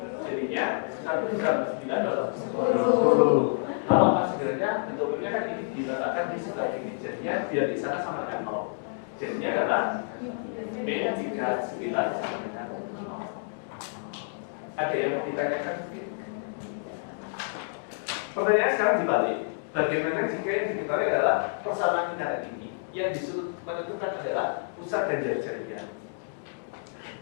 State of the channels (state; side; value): silent; right; digital silence